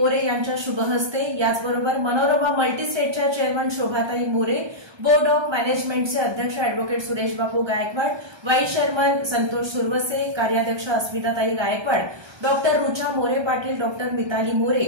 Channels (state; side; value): late; left; 1.3 ms